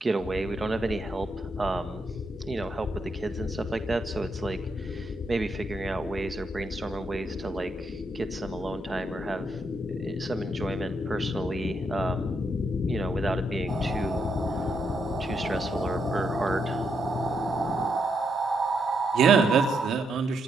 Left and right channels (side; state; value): both; normal; correlation 0.79